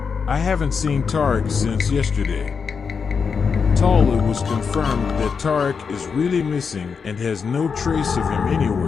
I haven't seen Tariq since yesterday." It was confirmed that Tariq is really missing and has no trace of him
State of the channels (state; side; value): quieter; right; 5.8 dB